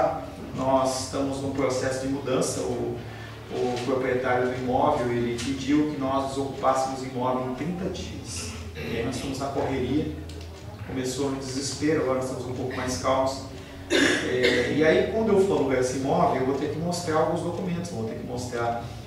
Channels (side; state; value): both; identical; correlation 1.00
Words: nós estamos num processo de mudança. O proprietário do imóvel, ele pediu que nós desocupássemos o imóvel em 30 dias. E aí nós estamos na correria, começou no desespero, agora nós estamos um pouco mais calmos. E aí, quando eu for alugar esse imóvel, eu vou ter que mostrar alguns documentos, vou ter que mostrar